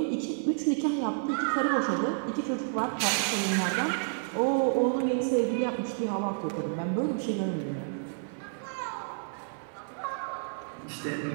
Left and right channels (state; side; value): silent; left; 58 dB below the other